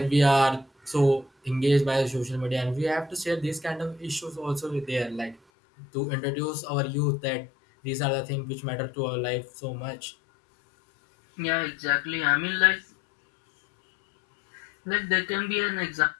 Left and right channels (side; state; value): right; drops out; at 5.4 s